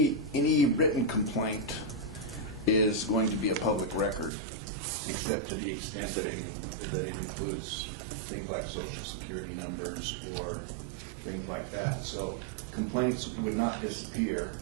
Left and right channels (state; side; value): drops out; left; at 4.3 s